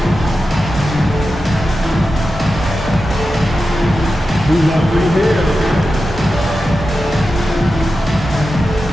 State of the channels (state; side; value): normal; both; correlation 0.91